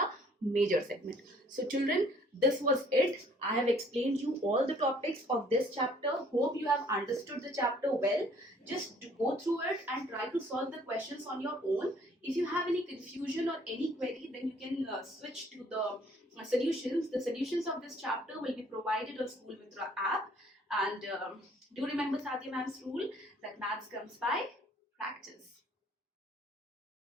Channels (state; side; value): normal; both; correlation 0.59